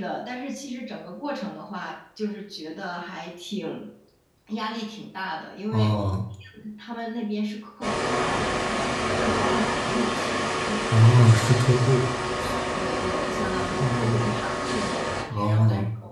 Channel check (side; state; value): both; identical; correlation 1.00